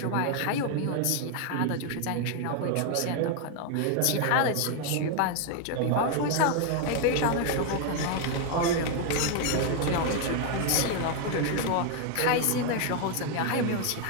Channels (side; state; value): both; different; correlation 0.00